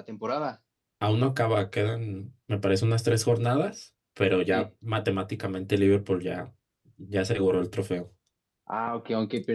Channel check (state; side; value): identical; both; correlation 1.00